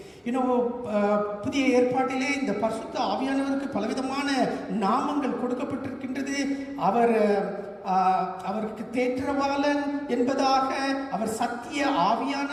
புதிய ஏற்பாட்டிலே இந்த பரிசுத்த ஆவியானவருக்கு பலவிதமான நாமங்கள் கொடுக்கப்பட்டிருக்கின்றது. அவருக்கு தேற்றவாளன் என்பதாக, அவர் சத்திய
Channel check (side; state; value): both; identical; correlation 1.00